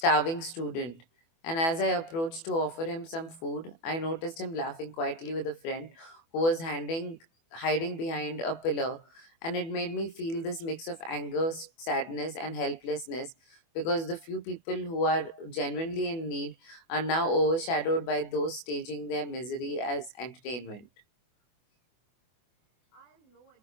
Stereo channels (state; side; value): late; right; 24 ms